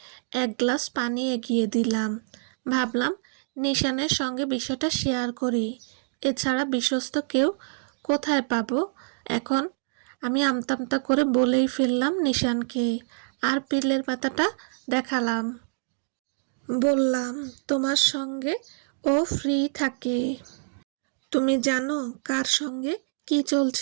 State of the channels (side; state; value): left; silent; digital silence